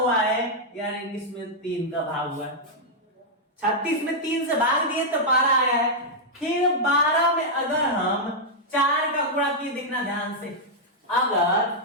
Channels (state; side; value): normal; both; correlation -0.05